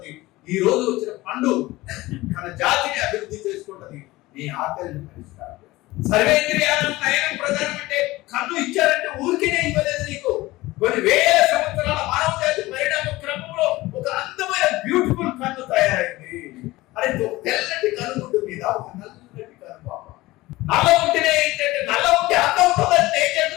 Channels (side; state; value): right; quieter; 19.1 dB